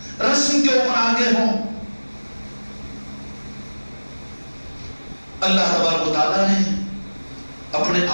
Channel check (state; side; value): inverted; both; correlation -1.00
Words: رسم کے اوپر آگے ہوں. اللہ تبارک و تعالیٰ نے اپنے